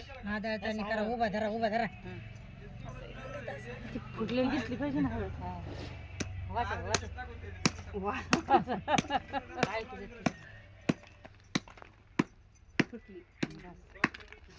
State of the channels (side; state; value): both; identical; correlation 1.00